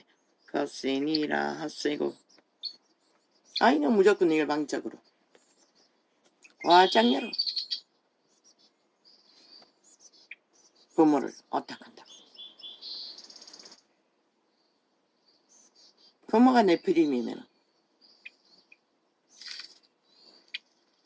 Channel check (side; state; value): both; identical; correlation 1.00